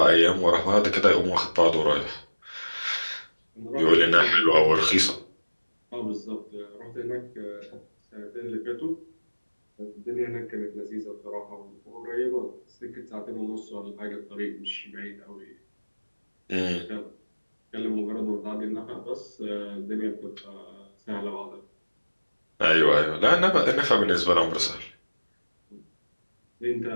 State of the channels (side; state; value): both; inverted; correlation -1.00